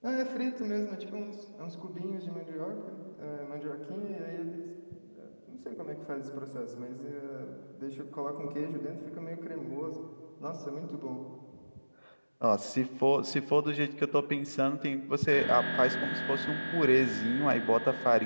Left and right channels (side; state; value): both; inverted; correlation -1.00